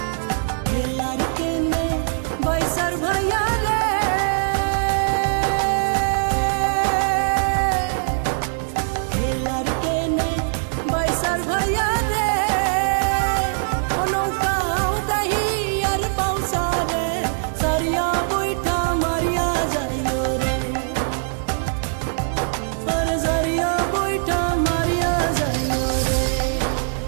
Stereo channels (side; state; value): left; silent; digital silence